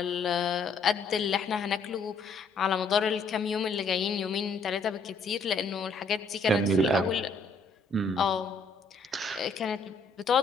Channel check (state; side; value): quieter; right; 3.7 dB